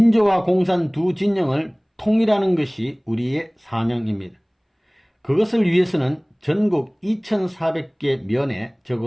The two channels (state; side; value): identical; both; correlation 1.00